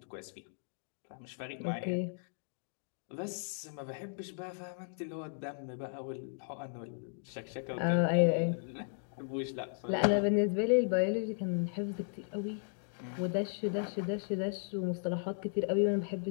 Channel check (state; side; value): silent; right; digital silence